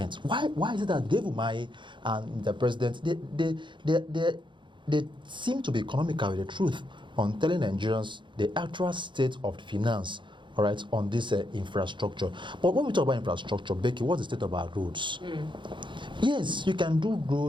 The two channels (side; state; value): left; late; 0.23 ms